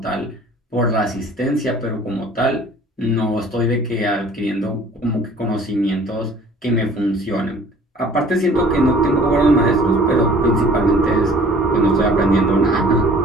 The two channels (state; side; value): normal; both; correlation 0.51